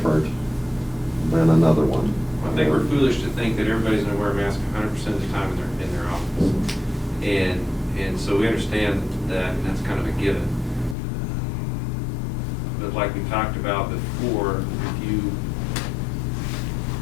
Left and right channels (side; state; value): right; drops out; at 11.0 s